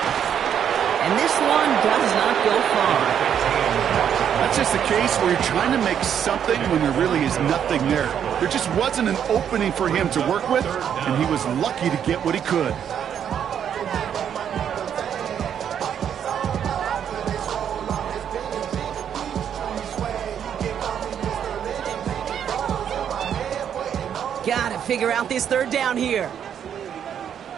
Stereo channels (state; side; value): quieter; left; 8.8 dB